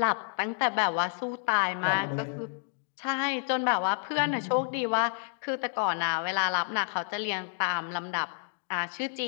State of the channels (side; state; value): right; silent; digital silence